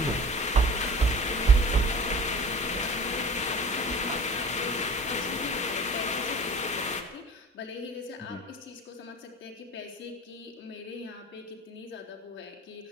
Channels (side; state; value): both; normal; correlation 0.40